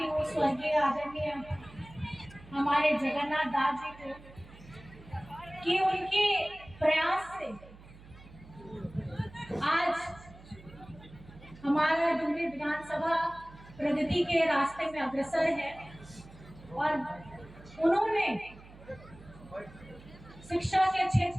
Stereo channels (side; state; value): right; noise; hum, 20 dB below the sound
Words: हूँ स्वर्गीय आदरणीय हमारे जगन्नाथ दास जी को कि उनके प्रयास से आज हमारा डुमरी विधानसभा प्रगति के रास्ते में अग्रसर है। और उन्होंने शिक्षा के